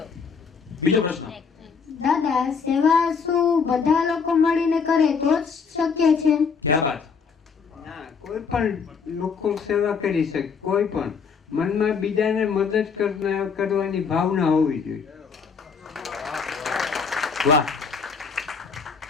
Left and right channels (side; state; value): right; quieter; 5.8 dB